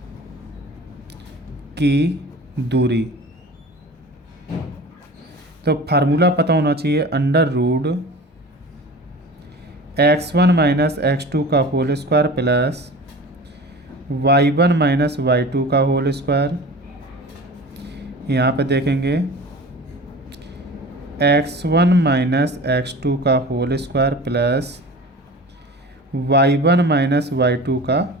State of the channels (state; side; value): normal; both; correlation 0.37